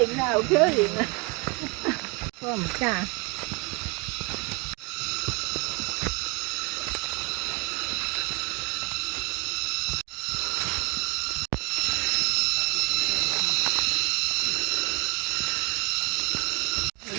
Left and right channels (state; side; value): quieter; left; 29.6 dB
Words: 啊，有可能啊。我唔敢。